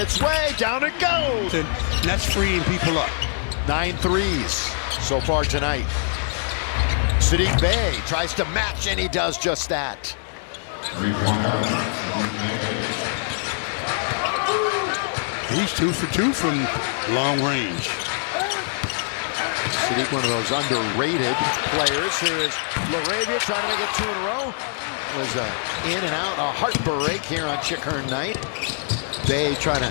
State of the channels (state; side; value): silent; right; 63 dB below the other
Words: way. Down it goes. And that's freeing people up. 9 threes so far tonight. Sadiq Bey tries to match, and he does just that. He's 2 for 2 from long range. Sadiq, one of those underrated players. Here is Laravia trying to make it 2 in a row. Was in and out, a heartbreak here on Chickern night. Bey trying to